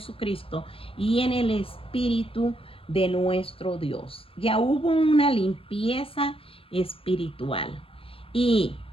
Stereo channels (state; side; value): late; right; 0.27 ms